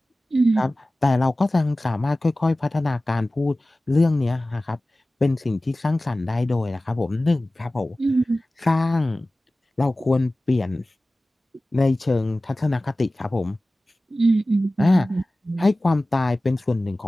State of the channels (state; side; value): normal; both; correlation 0.97